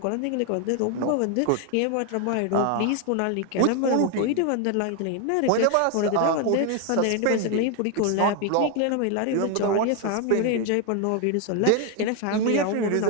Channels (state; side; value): different; both; correlation 0.01